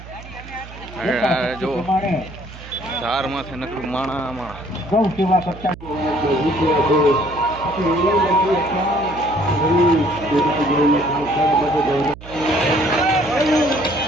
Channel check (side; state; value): right; noise; hum, 16 dB below the sound